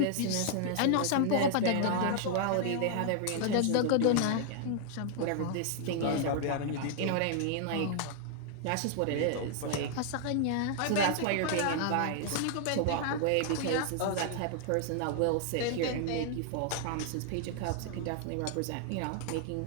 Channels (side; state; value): both; different; correlation 0.00